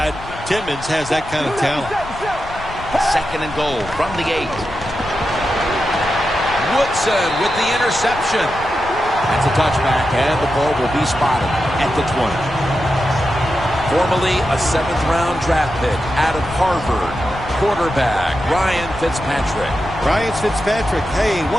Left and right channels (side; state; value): left; noise; rumble, 14 dB below the sound